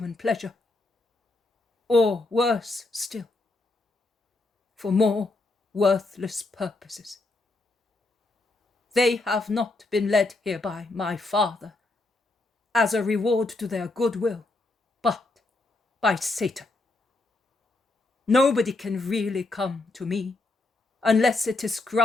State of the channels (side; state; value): right; quieter; 3.1 dB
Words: pleasure, or worse still, for more worthless purposes. They have not been led here by my Father as a reward to their goodwill, but by Satan. Nobody can really come to me unless it is